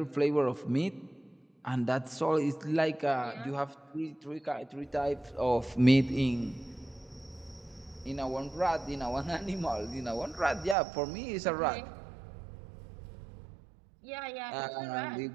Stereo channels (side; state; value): left; drops out; at 10.8 s